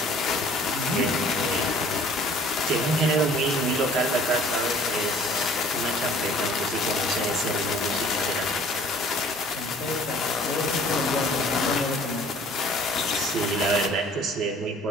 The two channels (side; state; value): both; normal; correlation 0.52